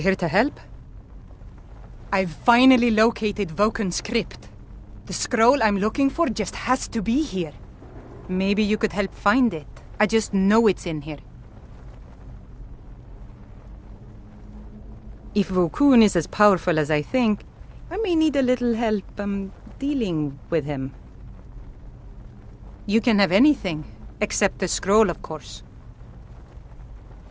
to help? I've finally located Voken's crypt. The scroll I'm looking for just has to be here. Maybe you could help find it. I just know it's in here. If Vokun is as powerful as I think, I may need a little help, dealing with him. You can have anything, except the scroll, of course.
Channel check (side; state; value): both; identical; correlation 1.00